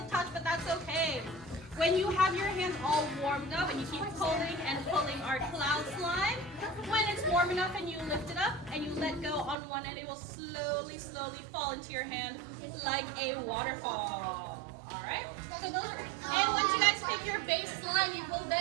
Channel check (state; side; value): drops out; left; at 9.6 s